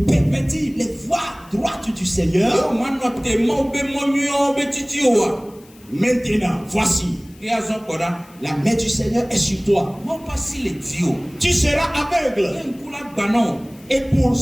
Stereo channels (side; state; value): left; noise; hiss, 27 dB below the sound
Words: les voies droites du Seigneur? Maintenant, voici, la main du Seigneur est sur toi. Tu seras aveugle. Et pour